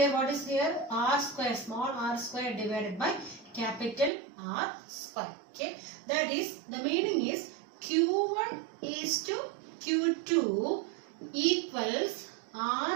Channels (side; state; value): left; drops out; at 4.1 s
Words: what is here? R square, small r square divided by capital R square. Okay, that is, the meaning is Q1 is to Q2 equals